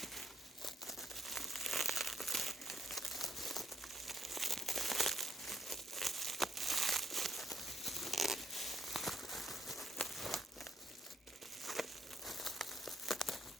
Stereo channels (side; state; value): both; normal; correlation 0.73